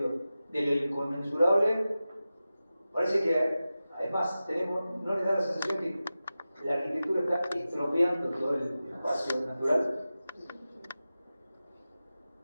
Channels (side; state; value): both; inverted; correlation -0.94